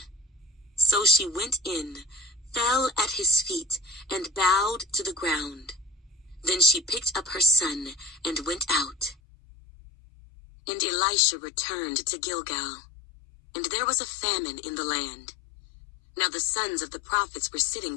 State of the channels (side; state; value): right; drops out; at 9.2 s